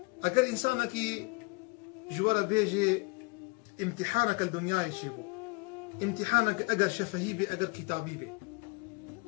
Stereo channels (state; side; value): quieter; right; 28.9 dB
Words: اگر انسانك جوارا بيجي امتحانك الدنيا يشيبو امتحانك اگر شفهي بي اگر كتابي بي